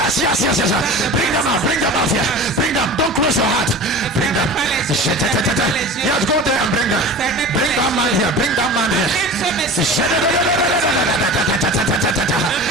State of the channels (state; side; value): normal; both; correlation 0.35